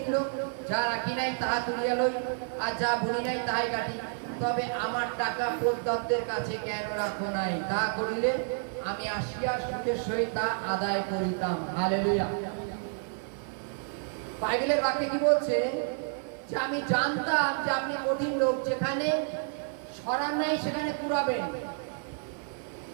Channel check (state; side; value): silent; left; 58 dB below the other